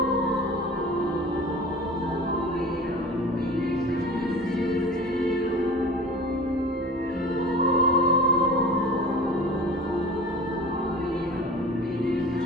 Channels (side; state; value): both; normal; correlation 0.38